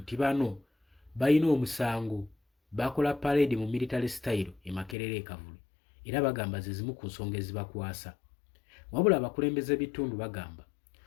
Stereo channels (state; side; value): drops out; right; at 5.0 s